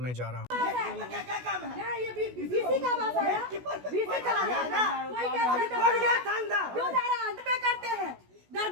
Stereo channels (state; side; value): late; left; 16 ms